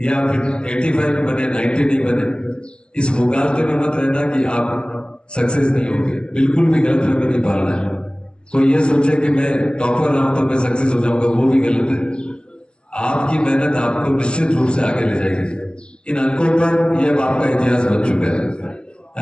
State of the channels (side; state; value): right; late; 0.052 ms